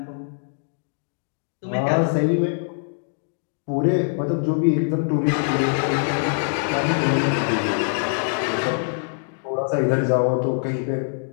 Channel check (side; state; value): right; silent; digital silence